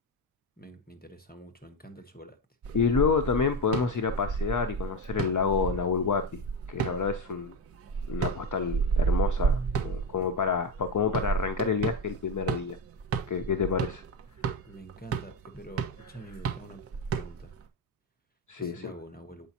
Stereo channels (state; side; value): normal; both; correlation 0.14